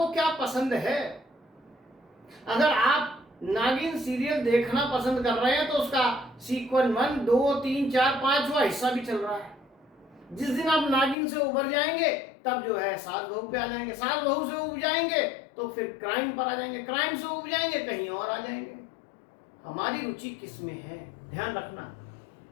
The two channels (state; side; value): drops out; right; at 11.2 s